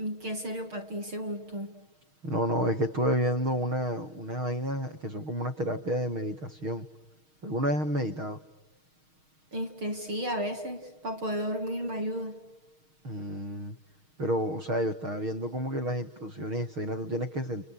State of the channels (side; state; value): left; late; 6.4 ms